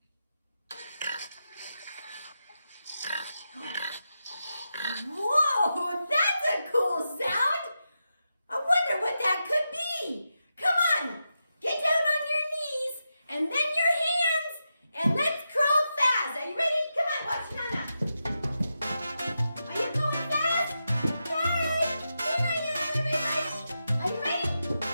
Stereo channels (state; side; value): inverted; both; correlation -0.88